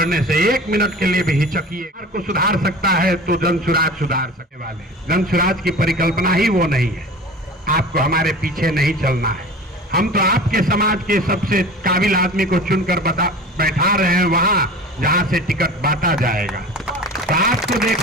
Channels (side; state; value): both; normal; correlation 0.37